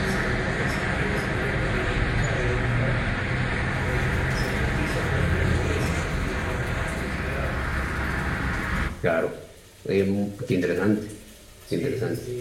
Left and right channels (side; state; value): both; identical; correlation 1.00